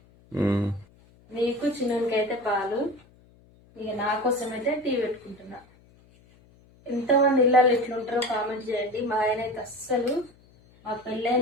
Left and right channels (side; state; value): left; noise; hum, 28 dB below the sound